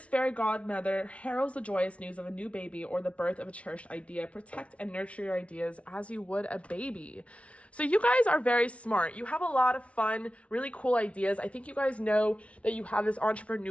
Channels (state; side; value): late; right; 0.063 ms